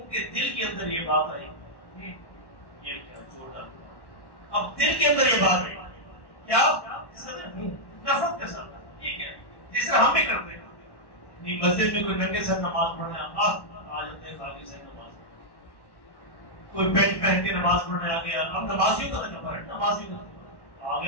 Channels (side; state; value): right; late; 1.1 ms